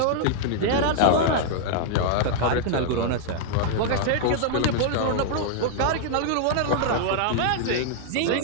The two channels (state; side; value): different; both; correlation 0.00